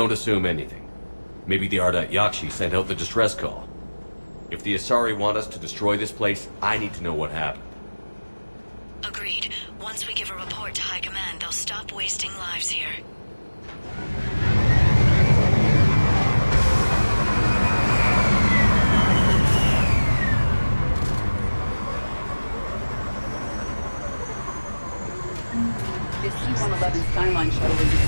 assume anything. Maybe the Ardat Yakshi sent out the distress call. If the Asari want us to destroy this place, I need to know what happened. Agreed. Once we give a report to High Command, they'll stop wasting lives here. The C-111 Skyline shuttle is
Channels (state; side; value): inverted; both; correlation -1.00